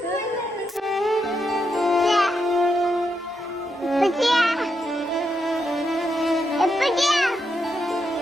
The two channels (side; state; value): both; normal; correlation 0.82